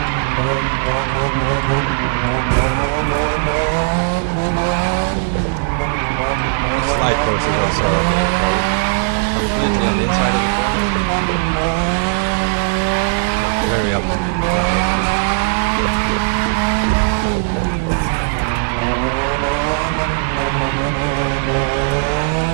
The slide course is also completely on the inside of the corner. Very up.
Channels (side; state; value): left; silent; digital silence